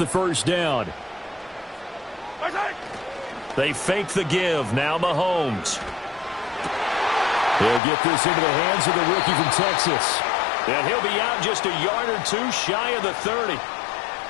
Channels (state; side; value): drops out; right; at 7.8 s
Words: first down. They fake the give. Now Mahomes. He'll get this into the hands of the rookie from Texas. And he'll be out just a yard or two shy of the 30.